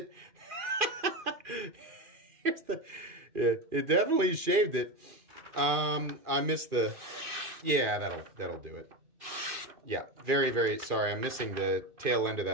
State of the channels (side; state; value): left; late; 2.4 ms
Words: Here's the, yeah, it definitely shaved it. I missed the, yeah, that'll do it. Yeah, very, very sorry. I'm missing the tail end of